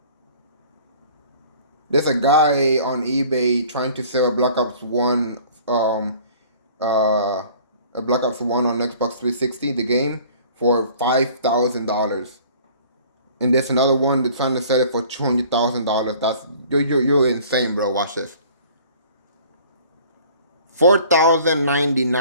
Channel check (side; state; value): both; inverted; correlation -0.50